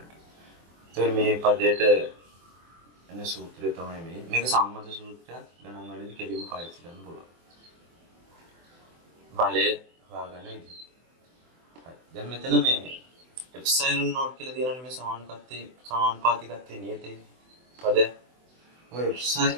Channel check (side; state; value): left; late; 24 ms